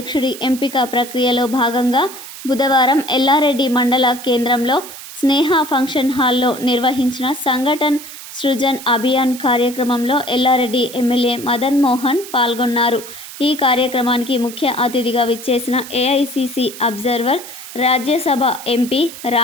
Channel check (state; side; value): noise; right; hiss, 13 dB below the sound